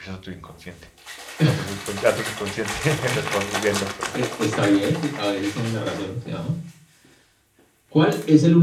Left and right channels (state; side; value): identical; both; correlation 1.00